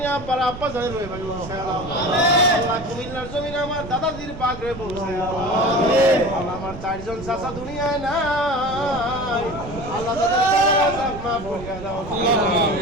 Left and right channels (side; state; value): right; noise; rumble, 12 dB below the sound